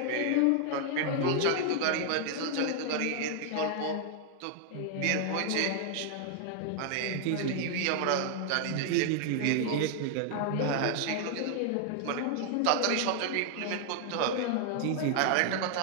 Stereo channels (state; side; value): different; both; correlation 0.00